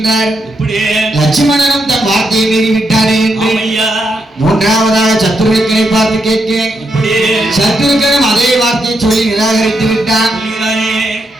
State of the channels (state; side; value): normal; both; correlation 0.81